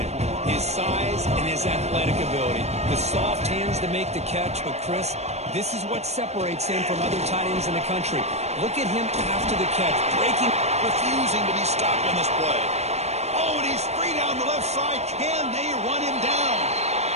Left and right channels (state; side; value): late; left; 0.31 ms